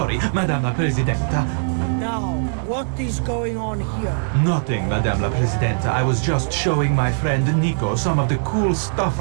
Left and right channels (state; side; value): silent; left; digital silence